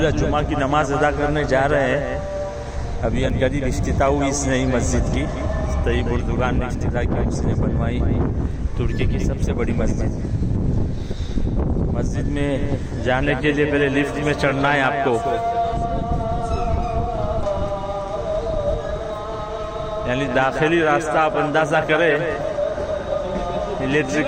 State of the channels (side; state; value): both; identical; correlation 1.00